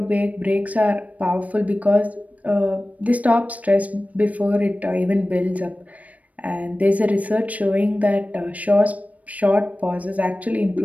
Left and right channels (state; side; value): late; left; 0.069 ms